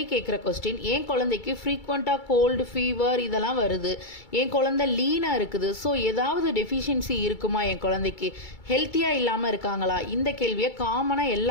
கேட்குற கொஸ்டின், என் குழந்தைக்கு ஃப்ரீக்வெண்ட்டாக கோல்டு, ஃபீவர் இதெல்லாம் வருது, என் குழந்தை லீனாக இருக்குது, ஸோ ஏதாவது டெஃபிஷியன்சி இருக்குமா, என் குழந்தைக்கு ஹெல்த்தியாக இல்லாமல் இருக்காங்களா, இந்த கேள்வியை காமனாக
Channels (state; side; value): late; right; 2.3 ms